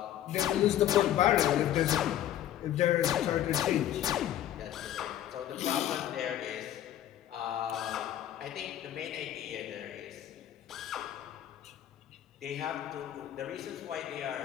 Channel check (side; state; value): right; quieter; 11.8 dB